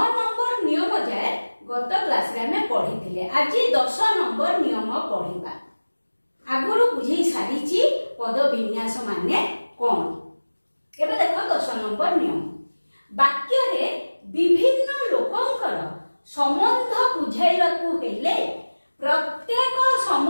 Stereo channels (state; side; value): inverted; both; correlation -1.00